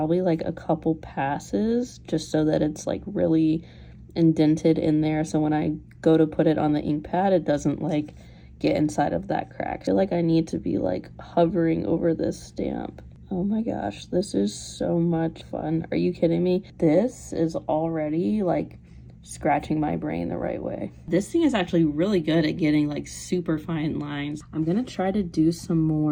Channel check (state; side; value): identical; both; correlation 1.00